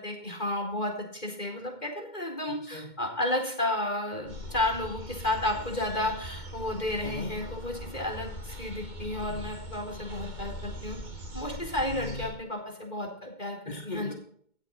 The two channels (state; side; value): late; right; 2.2 ms